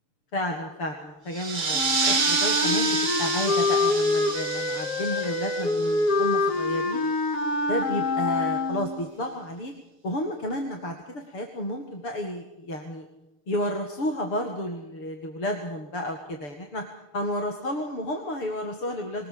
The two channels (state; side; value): late; right; 6.6 ms